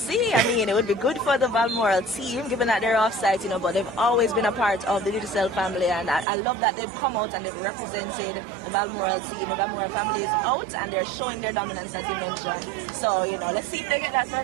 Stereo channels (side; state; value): left; drops out; at 6.2 s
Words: I mean, it would be good for the Balmoral team, given that they're offside, you know, but they've always been a part of the Digicel family, and I love that they've come out and they've represented the Balmoral team. The Balmoral family is out and they're showing their dominance, as you mentioned. So, you know, let's see if they get that